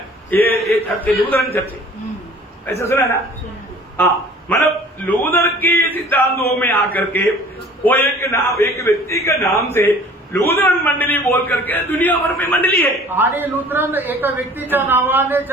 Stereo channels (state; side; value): normal; both; correlation 0.49